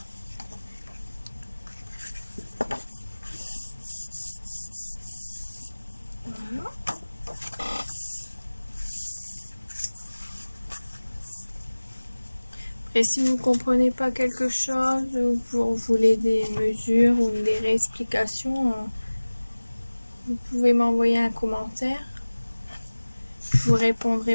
Et si vous ne comprenez pas quelque chose, ou vous voulez des mesures ou des réexplications, vous pouvez m'envoyer un commentaire. Je vous répondrai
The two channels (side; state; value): both; inverted; correlation -1.00